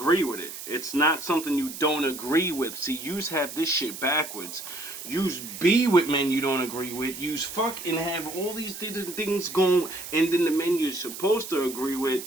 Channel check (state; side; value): noise; right; hiss, 10 dB below the sound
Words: with it. It's not something you don't agree with. See, yous have this shit backwards. Yous be with men you don't agree with. Yous fuck and have all these different things going, and then the men you're supposed to agree with,